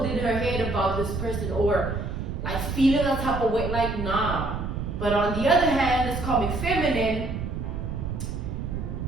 in her head about this person or, like, feeling a type of way. Like, nah. But on the other hand, this karmic feminine,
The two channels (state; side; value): noise; right; rumble, 4 dB below the sound